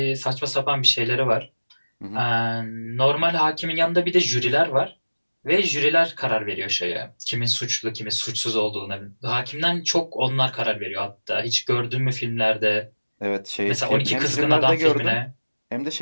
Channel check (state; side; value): inverted; both; correlation -1.00